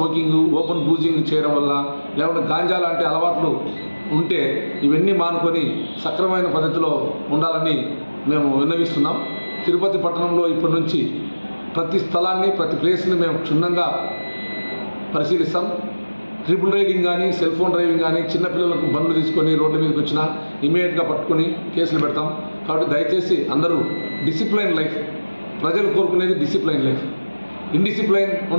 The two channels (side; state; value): both; inverted; correlation -1.00